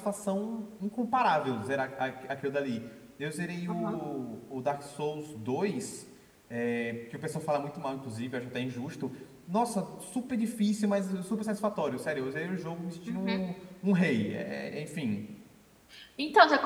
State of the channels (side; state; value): both; identical; correlation 1.00